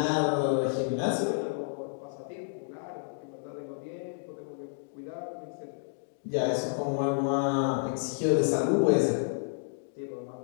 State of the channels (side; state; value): right; silent; digital silence